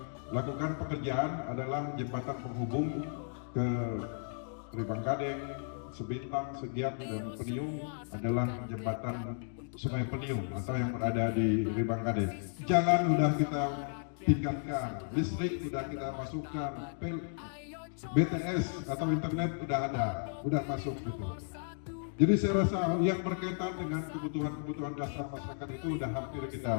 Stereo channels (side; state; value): right; silent; digital silence